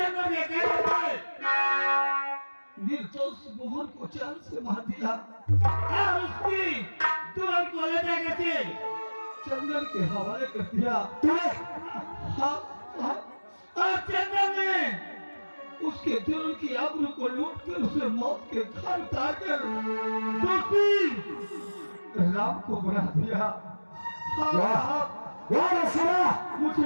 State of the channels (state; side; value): inverted; both; correlation -1.00